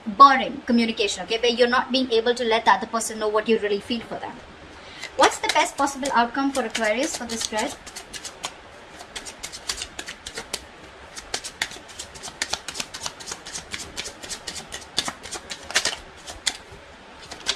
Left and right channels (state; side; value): identical; both; correlation 1.00